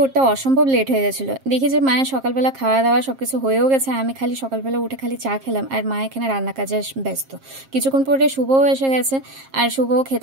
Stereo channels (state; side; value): late; left; 7.5 ms